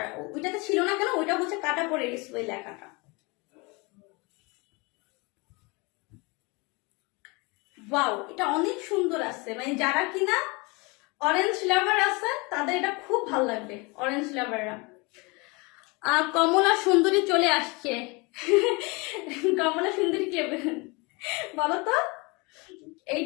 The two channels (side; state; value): right; quieter; 27.5 dB